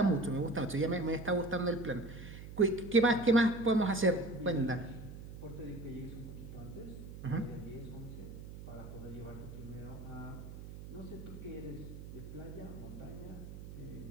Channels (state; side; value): noise; right; hum, 12 dB below the sound